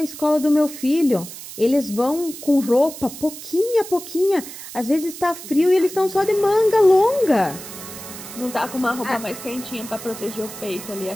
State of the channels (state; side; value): noise; right; hiss, 13 dB below the sound